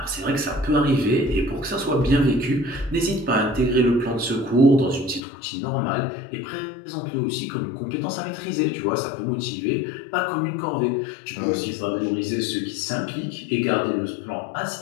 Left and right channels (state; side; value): drops out; right; at 5.2 s